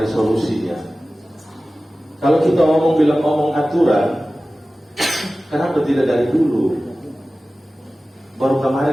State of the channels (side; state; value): both; normal; correlation 0.96